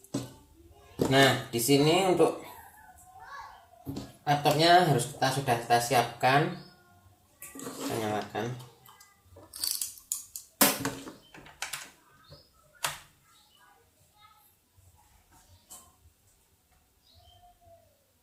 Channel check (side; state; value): both; identical; correlation 1.00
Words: Nah, di sini untuk laptopnya harus sudah kita siapkan. Kita nyalakan.